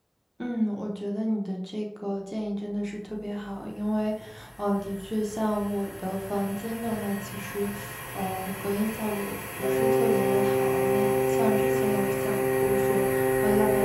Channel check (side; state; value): both; identical; correlation 1.00